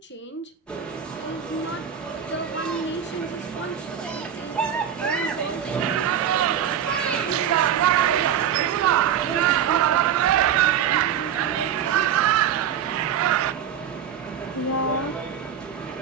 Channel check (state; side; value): quieter; left; 9.0 dB